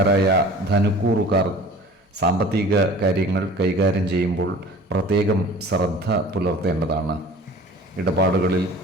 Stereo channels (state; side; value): normal; both; correlation 0.44